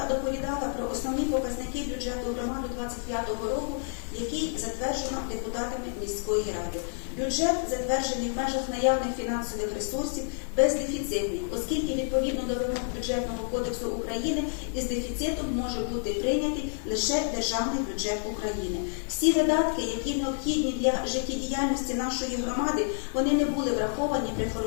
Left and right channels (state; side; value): silent; right; digital silence